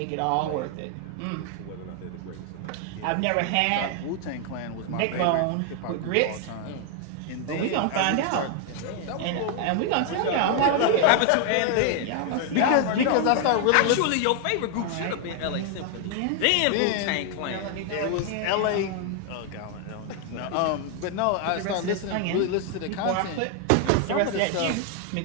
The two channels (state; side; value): different; both; correlation 0.00